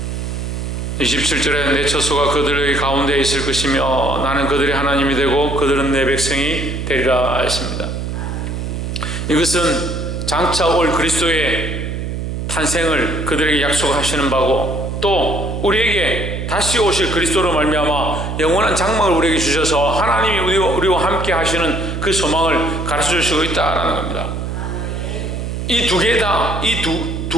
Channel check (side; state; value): right; noise; hum, 4 dB below the sound